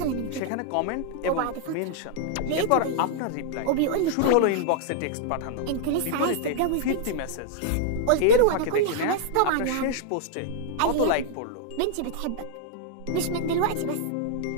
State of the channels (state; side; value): different; both; correlation -0.01